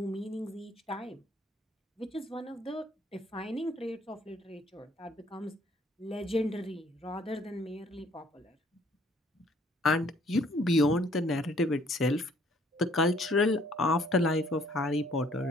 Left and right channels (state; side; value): normal; both; correlation 0.61